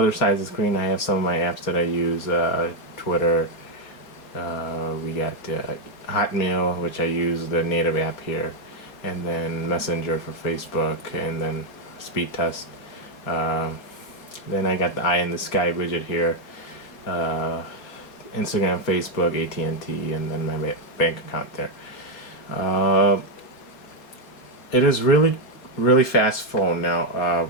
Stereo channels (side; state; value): right; late; 4.2 ms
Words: side of the screen, I have some of my apps that I use. Twitter. We got Hotmail, which I use the native app here, and then Messenger for Facebook, and then Speed Test. Then I got the Eye in the Sky widget here. Instagram, Facebook, AT&T, and then my bank account there. It is really fast phone. Now